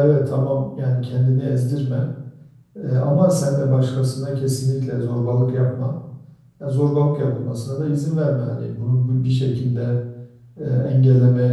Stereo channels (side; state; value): both; identical; correlation 1.00